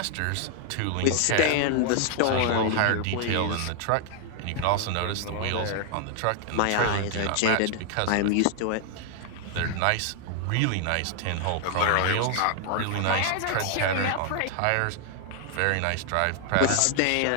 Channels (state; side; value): different; both; correlation 0.00